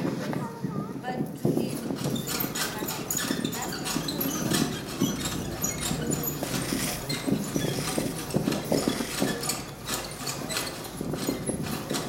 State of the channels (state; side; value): identical; both; correlation 1.00